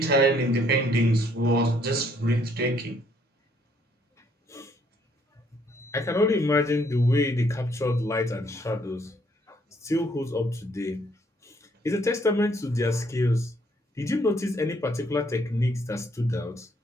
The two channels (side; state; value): both; normal; correlation 0.67